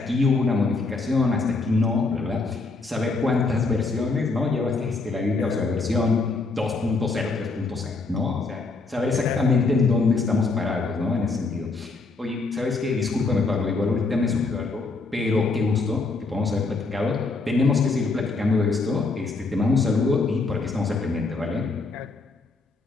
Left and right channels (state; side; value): quieter; right; 3.8 dB